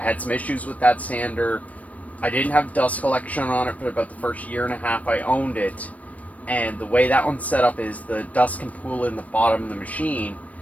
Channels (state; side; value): late; right; 0.068 ms